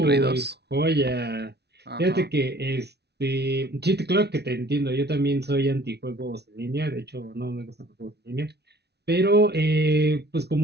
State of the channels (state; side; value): late; left; 0.49 ms